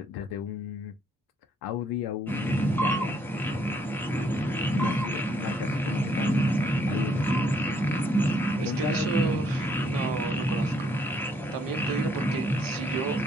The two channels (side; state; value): both; normal; correlation 0.68